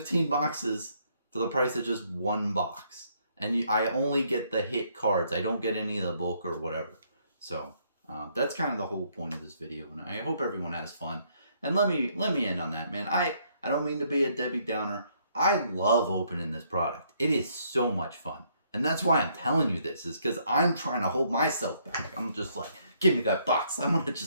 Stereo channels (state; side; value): inverted; both; correlation -0.69